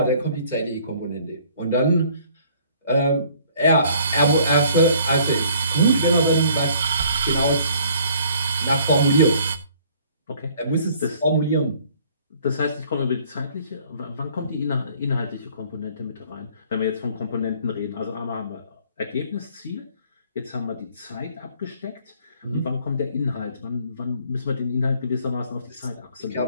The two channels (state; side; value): inverted; both; correlation -0.58